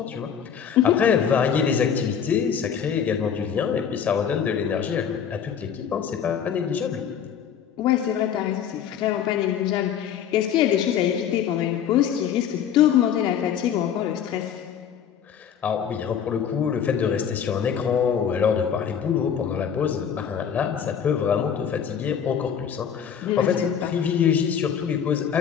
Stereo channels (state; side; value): quieter; right; 8.2 dB